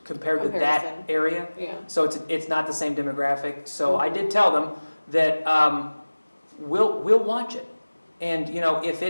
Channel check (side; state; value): both; inverted; correlation -1.00